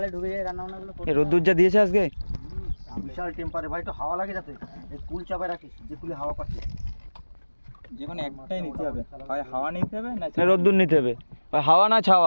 ঢুকে যায়, রান্না বান্নাগুলো এই রোদ্দুর যা দিয়েছে আজকে, বিশাল টেম্পারে ভাই, তো হাওয়া লাগে যাতে এই কুল চাপায় রাখিস, যে কুলে হাওয়া পাচ্ছে। যে কোনো একটাই নিতে হবে, হয় হাওয়া নিতে হবে না রোদ্দুর নিতে হবে। হাওয়া না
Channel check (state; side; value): inverted; both; correlation -1.00